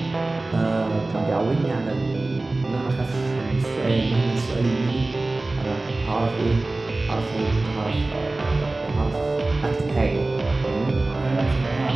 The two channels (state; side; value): quieter; left; 3.1 dB